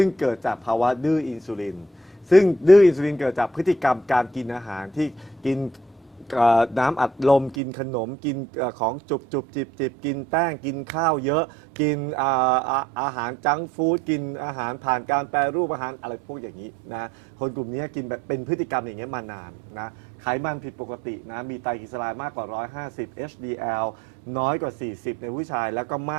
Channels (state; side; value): drops out; left; at 7.6 s